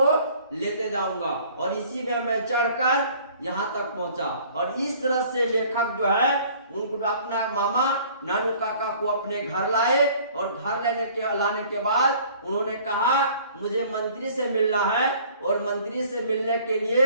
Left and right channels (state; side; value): inverted; both; correlation -0.53